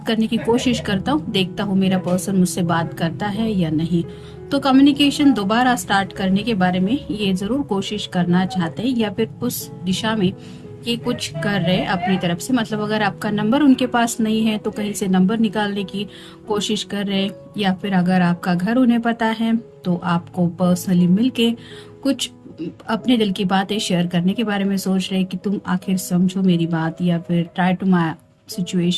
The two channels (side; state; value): both; identical; correlation 1.00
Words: करने की कोशिश करता हूँ, देखता हूँ मेरा पर्सन मुझसे बात करता है या नहीं। तो कम्युनिकेशन दोबारा स्टार्ट करने के बारे में ये जरूर कोशिश करना चाहते हैं, या फिर उस दिशा में ये कुछ कर रहे हैं अपनी तरफ से। मतलब अगर आपका नंबर उनके पास नहीं है तो कहीं से नंबर निकालने की कोशिश कर रहे हैं, या फिर अगर आपका घर उन्हें पता है तो आपको पर्सनली मिलके कुछ अपने दिल की बातें शेयर करने के बारे में सोच रहे हैं कि तुम आखिर समझो मेरी बात, या फिर ट्राई टू माई